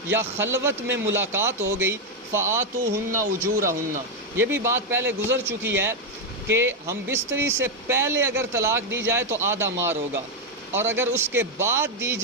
یا خلوت میں ملاقات ہو گئی، فآتوہن اجورہن، یہ بھی بات پہلے گزر چکی ہے کہ ہم بستری سے پہلے اگر طلاق دی جائے تو آدھا مہر ہوگا، اور اگر اس کے بعد دی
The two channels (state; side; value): normal; both; correlation 0.03